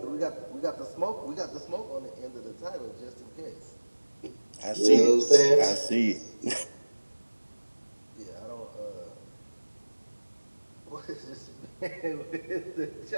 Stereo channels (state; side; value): inverted; both; correlation -1.00